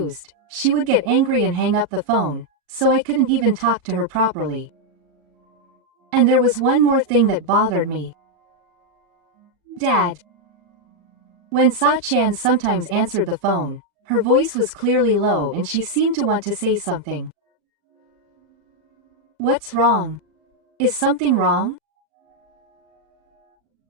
she would get angry and hang up the phone, so I couldn't even talk to her properly. And there was one more thing that bothered me. Dad. When Sa-chan sometimes answered the phone, her voice was clearly low and she seemed to want to say something. What's wrong? Is something wrong?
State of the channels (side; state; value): left; late; 38 ms